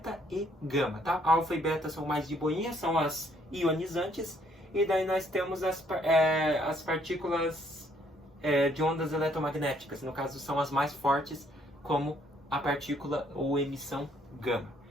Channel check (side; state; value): both; normal; correlation 0.66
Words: e gama, tá? Alfa e beta são mais de boinha, são as ionizantes. E daí nós temos as partículas de ondas eletromagnéticas. No caso, são as mais fortes, como a partícula ou emissão gama.